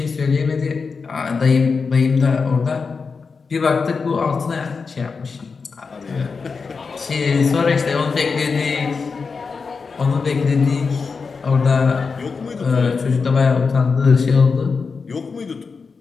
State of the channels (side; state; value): right; quieter; 4.9 dB